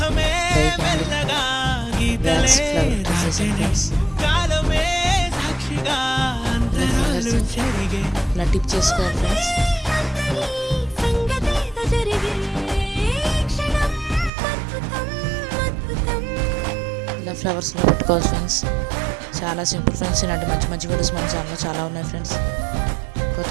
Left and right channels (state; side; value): drops out; left; at 14.3 s